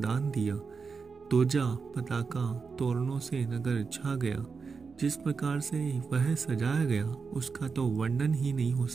दिया। ध्वजा, पताका, तोरणों से नगर छा गया। जिस प्रकार से वह सजाया गया, उसका तो वर्णन ही नहीं हो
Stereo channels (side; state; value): left; quieter; 5.1 dB